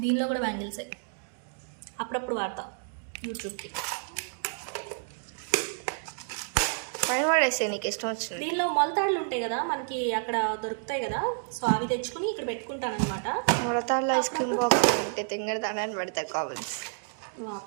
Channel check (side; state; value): left; silent; digital silence